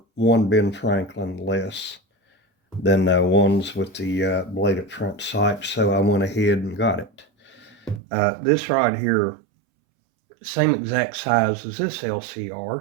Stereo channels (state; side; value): drops out; left; at 8.0 s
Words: 1 Ben Franklin less than the ones with the bladed front sight, so I went ahead and got it. This right here, same exact size as this